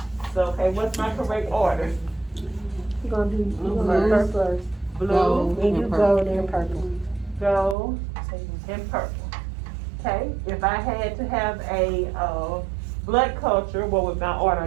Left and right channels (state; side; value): drops out; left; at 7.8 s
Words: So, okay, what's my correct order? You gonna do Blue purple first. Blue, Then you gold and purple. gold, and purple. Okay, if I had to have a blood culture, what would my